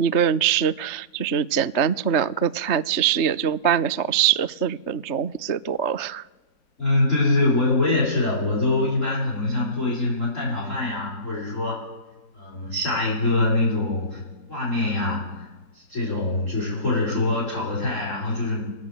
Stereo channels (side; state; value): right; late; 3.3 ms